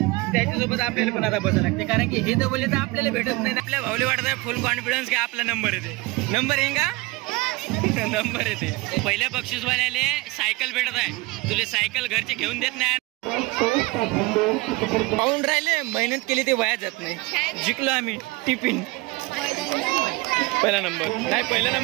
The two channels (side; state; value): left; quieter; 23.1 dB